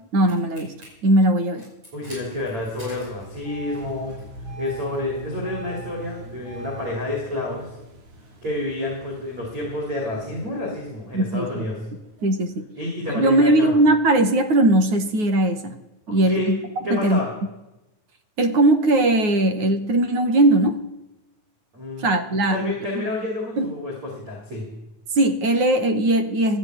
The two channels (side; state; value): left; late; 9.5 ms